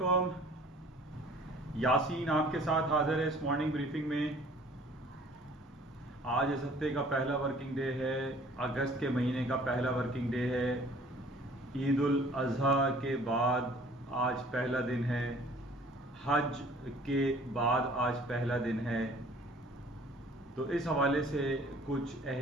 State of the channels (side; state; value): both; normal; correlation 0.52